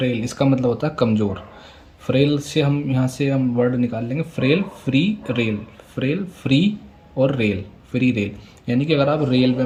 इसका मतलब होता है कमज़ोर। फ्रेल से हम यहाँ से हम वर्ड निकाल लेंगे frail, free, rail. Frail, free और रेल, फ्री रेल। यानी कि अगर आप रेलवे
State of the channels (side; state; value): both; identical; correlation 1.00